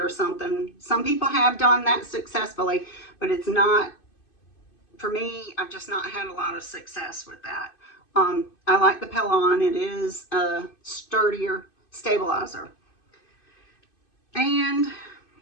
or something. Some people have done that successfully, but it's not, for me, I've just not had a lot of success with that. I like the Petalon. It is a sturdier stabilizer. And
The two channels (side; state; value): right; late; 2.5 ms